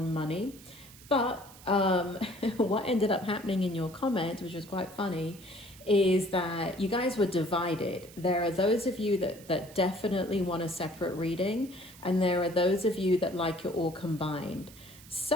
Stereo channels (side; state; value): right; noise; hiss, 20 dB below the sound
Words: money, but what ended up happening in your comment, which was quite funny, is that you guys were divided. There are those of you that definitely want a separate reading, and there are those of you that like it all combined.